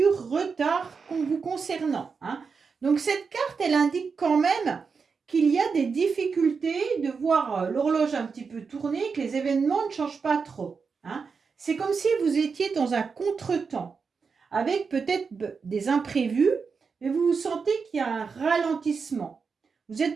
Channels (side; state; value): left; quieter; 5.3 dB